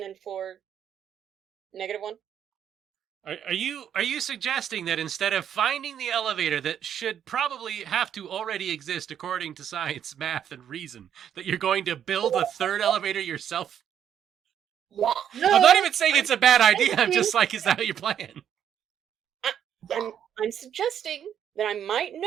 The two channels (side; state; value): left; quieter; 9.2 dB